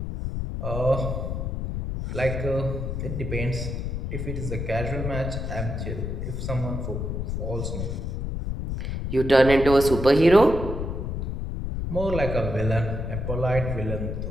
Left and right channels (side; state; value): left; noise; rumble, 3 dB below the sound